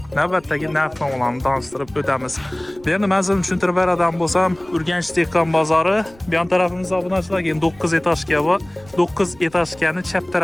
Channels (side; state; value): right; noise; rumble, 25 dB below the sound